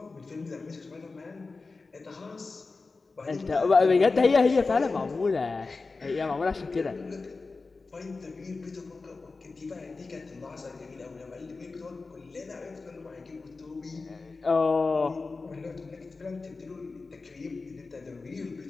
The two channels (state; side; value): quieter; right; 3.9 dB